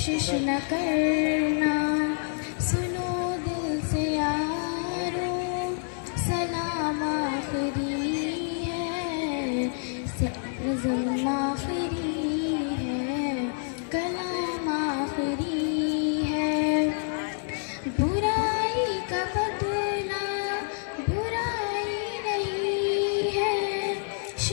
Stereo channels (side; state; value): right; silent; 60 dB below the other